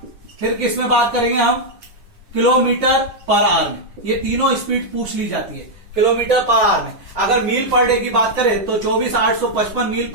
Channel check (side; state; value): left; late; 10 ms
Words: फिर किसमें बात करेंगे हम, किलोमीटर पर आवर में। ये तीनों स्पीड पूछ ली जाती है किलोमीटर पर आवर में। अगर मील पर डे की बात करें तो 24,855 मील